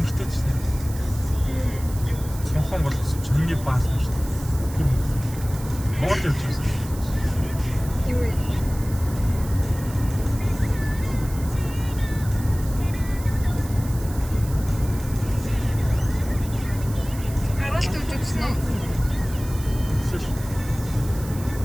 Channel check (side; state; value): right; noise; hiss, 16 dB below the sound